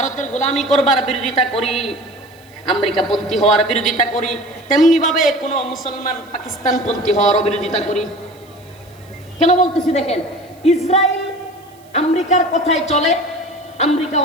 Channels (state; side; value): noise; right; hiss, 29 dB below the sound